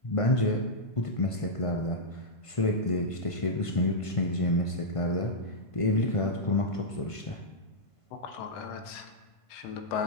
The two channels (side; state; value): right; late; 1.5 ms